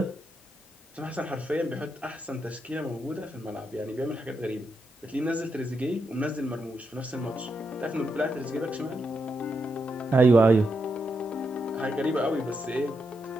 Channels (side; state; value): both; normal; correlation 0.83